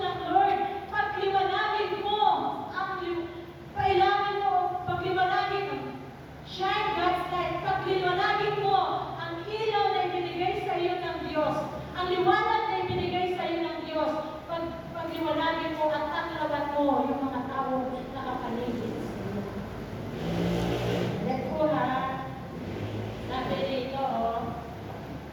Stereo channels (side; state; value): both; identical; correlation 1.00